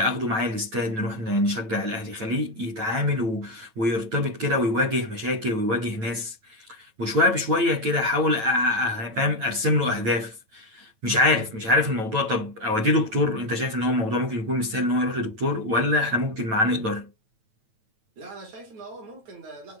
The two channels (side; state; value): left; late; 9.1 ms